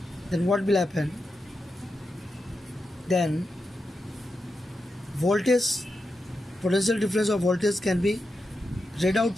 then what will happen? Then voltage, potential difference of voltage can be read out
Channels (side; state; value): both; normal; correlation 0.88